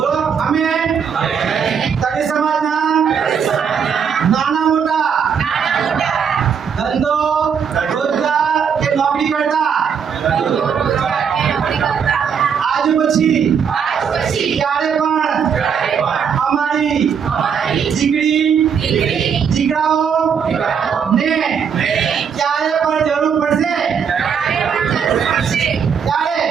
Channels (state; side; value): quieter; left; 7.1 dB